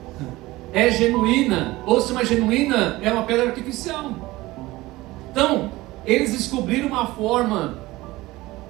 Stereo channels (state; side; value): quieter; left; 19.1 dB